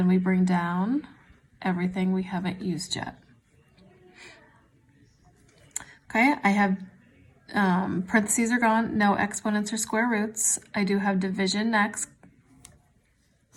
we bring down everything we haven't used yet. Okay, I have parentheses are gone, no exponents or square roots. I do have division next.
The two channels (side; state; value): both; identical; correlation 1.00